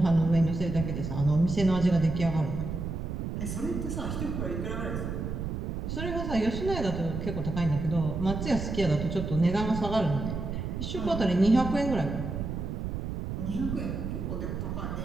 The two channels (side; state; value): right; noise; rumble, 4 dB below the sound